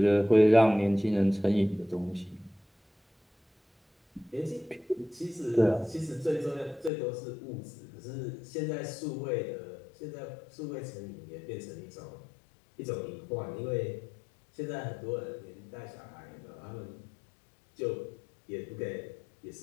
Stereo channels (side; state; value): right; drops out; at 6.9 s